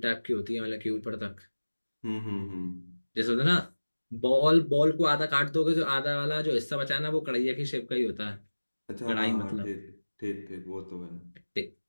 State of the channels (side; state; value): both; inverted; correlation -1.00